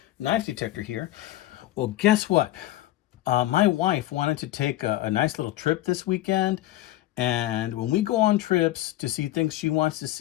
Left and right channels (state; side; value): quieter; right; 15.2 dB